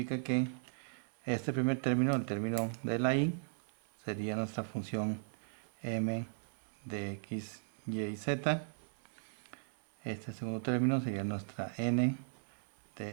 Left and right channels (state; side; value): silent; left; digital silence